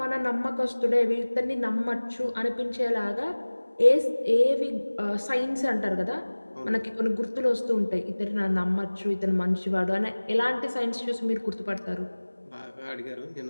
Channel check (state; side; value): inverted; both; correlation -1.00